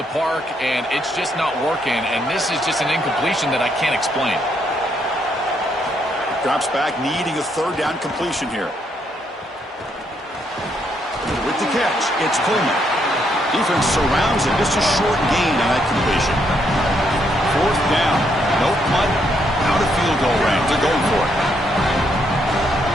park and it's just not working, and this is just an incompletion that I can't explain. Drops back, needing a 3rd down completion here. With the catch, it's Coleman. Defense surrounds him. Just a short gain on that completion. 4th down. No punt. Out of field goal range. They're going for it.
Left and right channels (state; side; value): normal; both; correlation 0.74